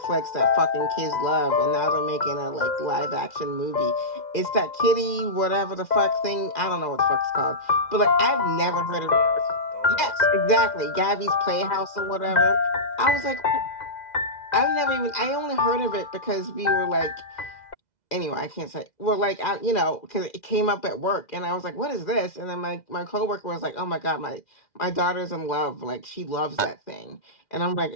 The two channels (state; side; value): late; right; 2.0 ms